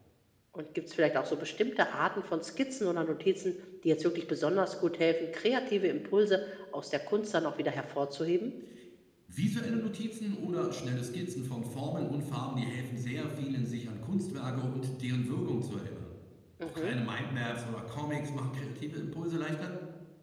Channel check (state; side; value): identical; both; correlation 1.00